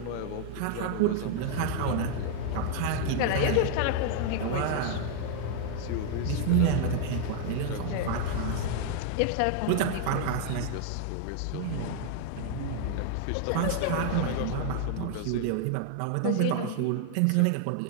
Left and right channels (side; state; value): both; different; correlation 0.00